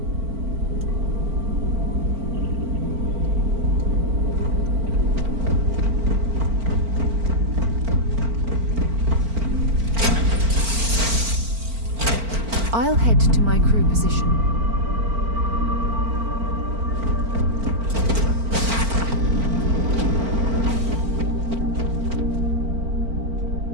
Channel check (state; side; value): late; left; 4.4 ms